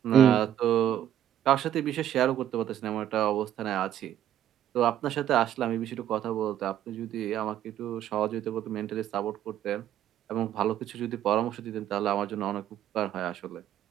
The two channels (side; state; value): left; quieter; 11.0 dB